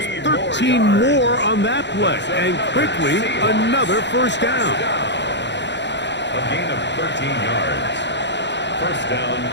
13 more on that play, and quickly another first down. A gain of 13 yards. First down,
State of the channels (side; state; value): right; late; 0.52 ms